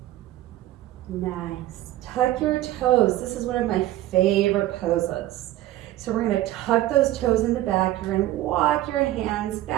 Nice. Tuck your toes. This is one of my favorite poses. So we're going to tuck those toes in the back. You're going to walk your hands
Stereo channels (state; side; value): quieter; left; 15.0 dB